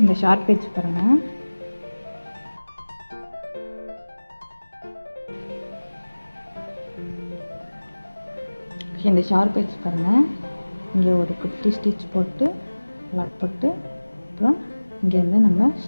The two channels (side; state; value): both; inverted; correlation -1.00